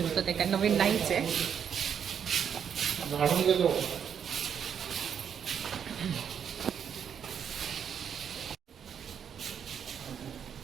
होतं, ते काय नवीन नाहीच आहे.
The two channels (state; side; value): quieter; left; 8.0 dB